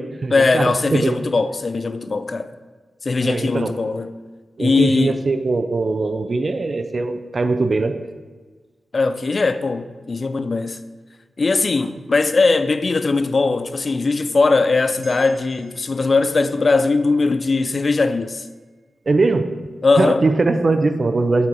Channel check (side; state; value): both; normal; correlation 0.93